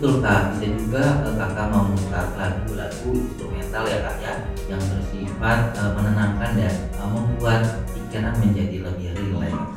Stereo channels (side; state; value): both; identical; correlation 1.00